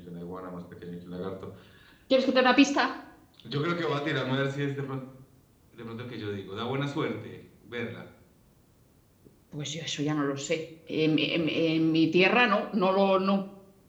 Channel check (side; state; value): both; identical; correlation 1.00